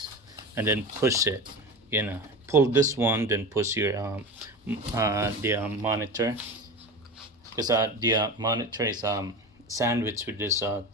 and then push it. Pull this one, then push your the monitor, because the monitor is sandwiched with this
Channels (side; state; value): both; normal; correlation 0.28